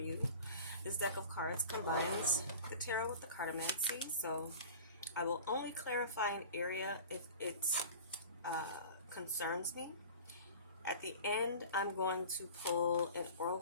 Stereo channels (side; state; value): both; inverted; correlation -0.39